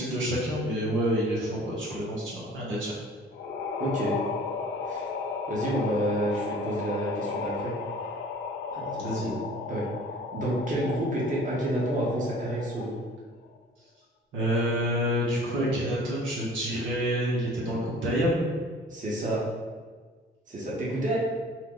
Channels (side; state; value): both; normal; correlation 0.48